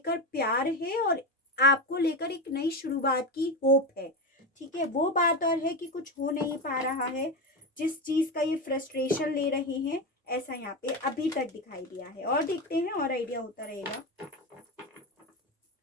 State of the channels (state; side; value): normal; both; correlation 0.16